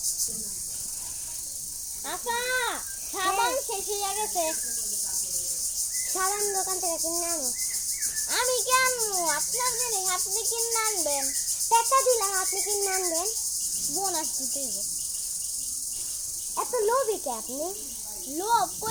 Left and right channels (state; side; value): identical; both; correlation 1.00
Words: আপা সাবান শেষ হয়ে গেছে সাবান দোকান থেকে কিনে আনো আমি কি আনবো আপনার জন্য আপনি কিনে আনবেন টাকা দিলাম আপনি কিনে আনবেন বোনাস দিতে হবে এত লোভী কে আপনি লোভ